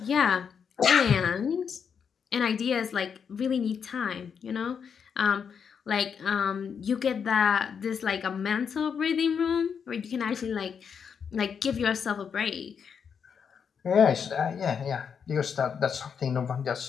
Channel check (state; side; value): quieter; right; 6.8 dB